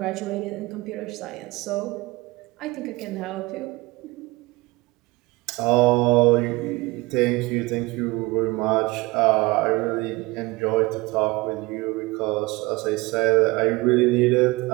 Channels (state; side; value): quieter; left; 22.7 dB